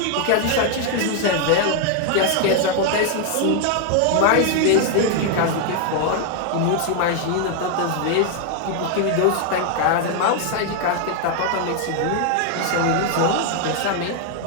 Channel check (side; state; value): both; different; correlation 0.00